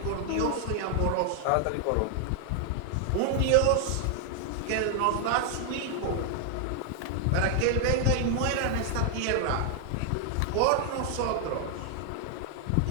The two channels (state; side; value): different; both; correlation 0.00